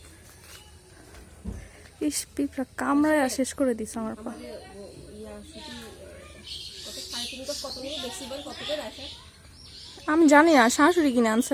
ইস পিঁপড়া কামড়ায় শেষ করে দিস আমার পা। আমি জানি না, শাশুড়ি কিনে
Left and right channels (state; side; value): identical; both; correlation 1.00